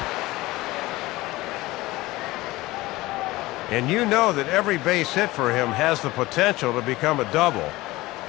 And you know that every base hit for him has the potential to become a double.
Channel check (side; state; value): right; quieter; 19.3 dB